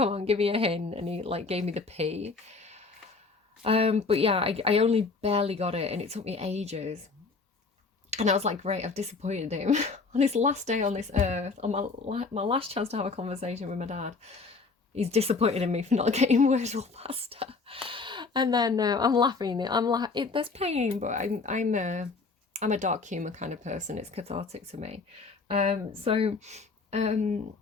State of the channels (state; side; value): quieter; right; 4.3 dB